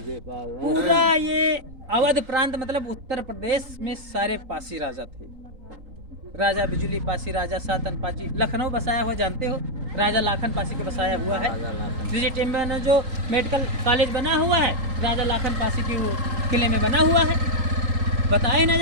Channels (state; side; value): late; left; 3.8 ms